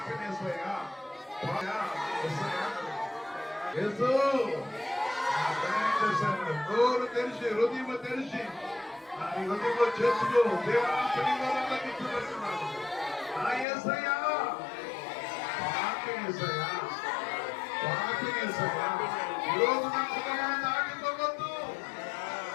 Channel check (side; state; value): right; drops out; at 13.7 s